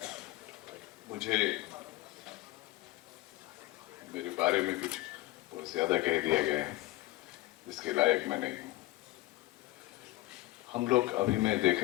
मुझे मेरे बारे में कुछ बहुत ज्यादा कह दिया गया है जिसके लायक मैं नहीं हूँ। हम लोग अभी मैं देख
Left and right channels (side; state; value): right; quieter; 18.0 dB